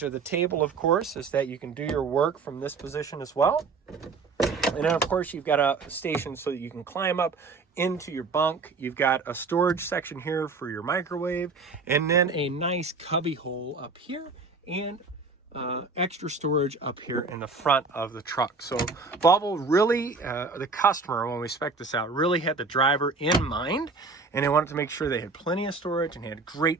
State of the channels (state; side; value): quieter; left; 4.2 dB